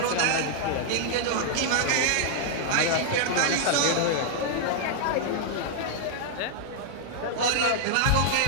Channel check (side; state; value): both; different; correlation -0.01